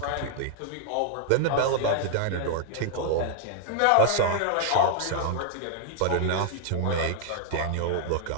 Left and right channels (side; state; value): both; different; correlation 0.00